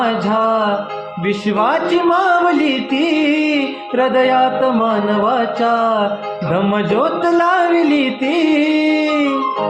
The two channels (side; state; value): both; identical; correlation 1.00